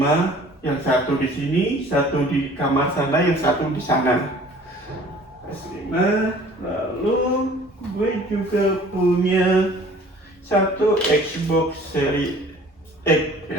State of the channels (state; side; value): normal; both; correlation 0.50